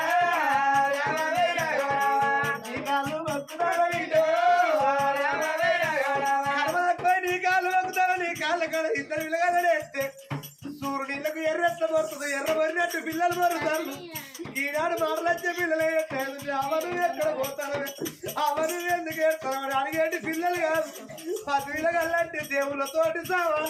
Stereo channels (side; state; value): both; identical; correlation 1.00